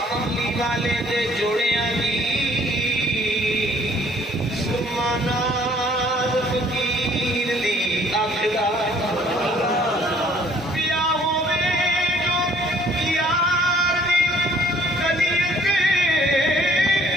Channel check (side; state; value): both; normal; correlation 0.58